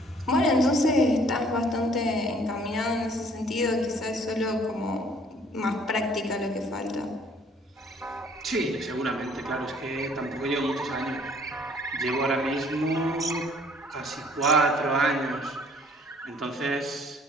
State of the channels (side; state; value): both; normal; correlation 0.58